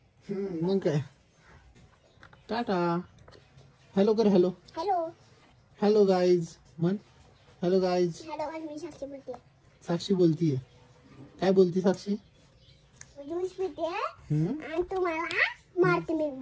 मग काय. टाटा. हॅलो कर. हॅलो हॅलो हॅलो गाईज म्हण. Hello guys. हॅलो, मी साक्षी बोलते. साक्षी बोलतीये. काय बोलती साक्षी? ज्यूस पिते हम्म? आणि तुम्हाला मारते मी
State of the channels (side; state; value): both; identical; correlation 1.00